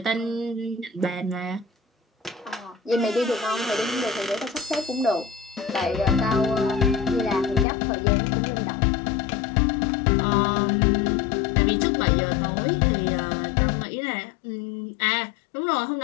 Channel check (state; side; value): drops out; right; at 7.7 s